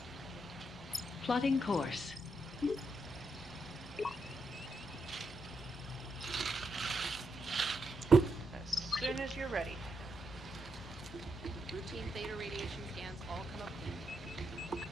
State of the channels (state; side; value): normal; both; correlation 0.82